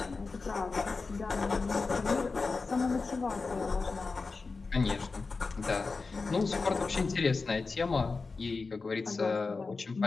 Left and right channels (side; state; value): right; quieter; 4.2 dB